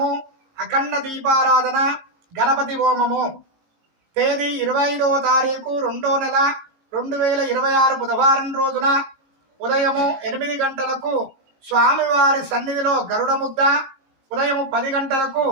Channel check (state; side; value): late; left; 19 ms